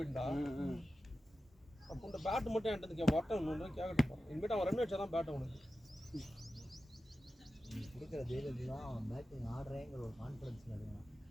அப்போ இந்த பேட்டு மட்டும் என்கிட்ட வட்டம் ஒன்று கேட்கட்டும். இனிமேட்டு அவன் ரன் அடிச்சா தான் பேட்டை உனக்கு கொடுக்குற தைரியத்தில் தான் அவன் பேட்டிங் ஆடுறேங்கிற ஒரு கான்ஃபிடன்ஸில் இருக்கான்.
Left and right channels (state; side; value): normal; both; correlation 0.93